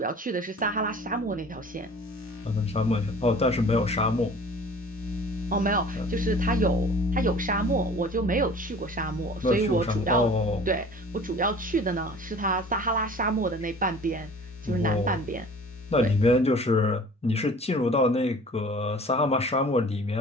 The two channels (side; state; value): both; normal; correlation 0.45